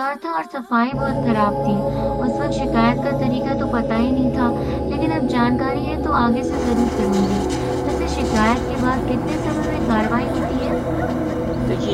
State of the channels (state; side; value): identical; both; correlation 1.00